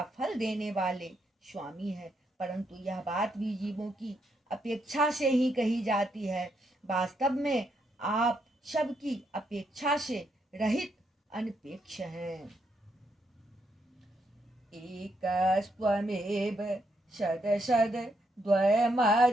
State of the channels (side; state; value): both; normal; correlation 0.78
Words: फल देने वाले स्वामी हैं, परंतु यह बात भी जीवों की अपेक्षा से ही कही जाती है। वास्तव में आप सबकी अपेक्षा से रहित अनपेक्ष हैं। एकस्त्वमेव शदशद